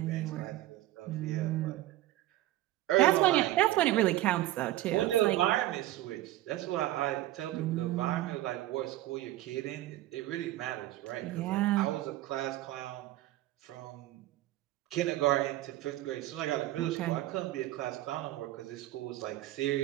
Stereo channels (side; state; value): left; quieter; 15.5 dB